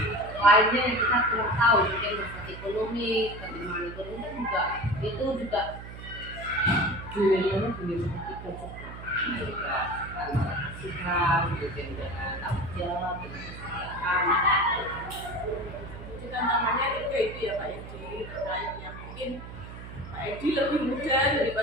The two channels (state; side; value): noise; right; hum, 12 dB below the sound